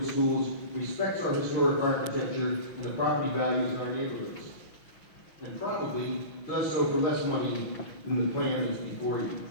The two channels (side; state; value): right; late; 6.0 ms